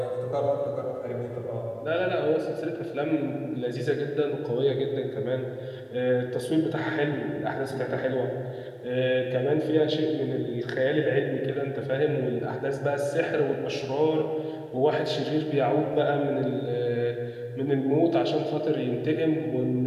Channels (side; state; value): both; identical; correlation 1.00